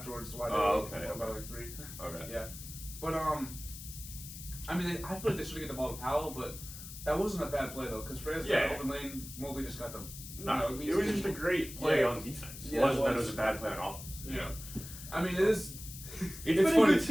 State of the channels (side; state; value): left; noise; hiss, 12 dB below the sound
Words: Why they okay. were by like 3. Okay. Yeah. But I mean, I feel like they should have get the ball to Powell, but that wasn't a bad play though, because Franz got an open lane. Mobley just got the. No, it was just a great play on defense. It wasn't that it was a bad play on offense. Yeah. I mean, it is. It's been funny. a good